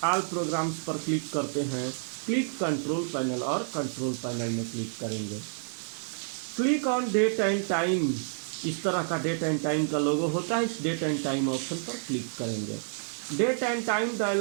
पर क्लिक करते हैं, क्लिक कंट्रोल पैनल और कंट्रोल पैनल में क्लिक करेंगे। Click on date and time, इस तरह का डेट एंड टाइम का लोगो होता है, इस डेट एंड टाइम ऑप्शन पर क्लिक करेंगे। Date and time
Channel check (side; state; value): left; silent; 58 dB below the other